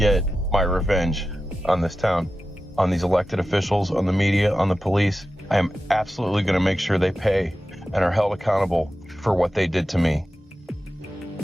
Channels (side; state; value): both; normal; correlation 0.93